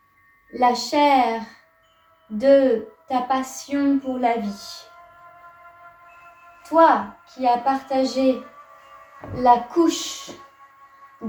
La chair de ta passion pour la vie. Toi qui as partagé la couche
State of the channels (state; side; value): identical; both; correlation 1.00